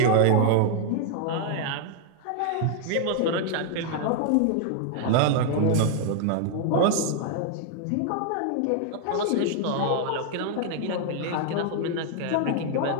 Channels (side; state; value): both; different; correlation 0.00